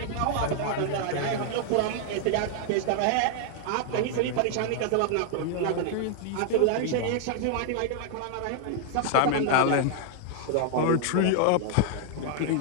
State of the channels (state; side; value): different; both; correlation 0.00